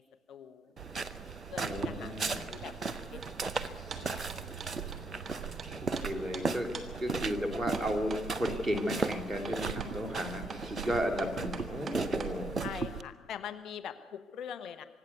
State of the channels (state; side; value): normal; both; correlation 0.74